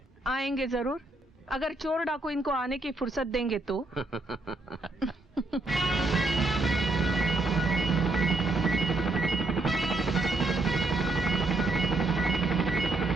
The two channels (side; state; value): left; quieter; 3.0 dB